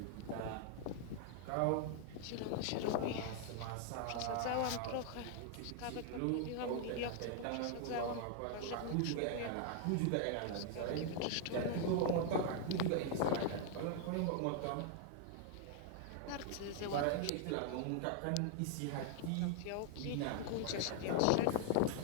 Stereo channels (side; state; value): both; different; correlation 0.00